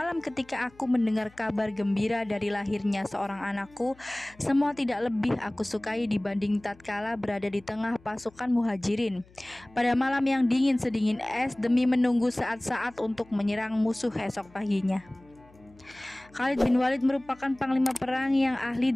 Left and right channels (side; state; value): left; noise; hum, 27 dB below the sound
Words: ketika aku mendengar kabar gembira dari lahirnya seorang anakku, semua tidak lebih aku sukai dibanding tatkala berada di tengah pasukan muhajirin pada malam yang dingin sedingin es demi menunggu saat-saat untuk menyerang musuh esok paginya. Khalid bin Walid merupakan panglima perang yang ahli